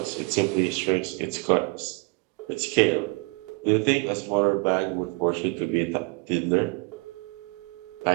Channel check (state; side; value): quieter; left; 30.0 dB